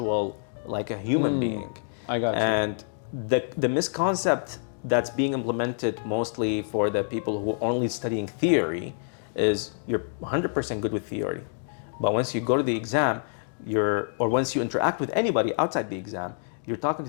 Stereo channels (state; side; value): silent; right; digital silence